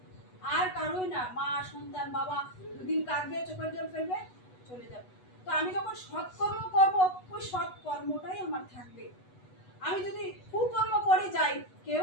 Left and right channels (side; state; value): right; late; 8.1 ms